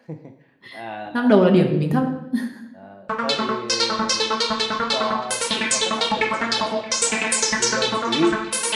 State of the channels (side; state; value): both; identical; correlation 1.00